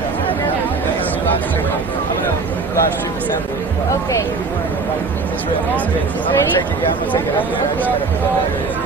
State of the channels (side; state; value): left; quieter; 4.2 dB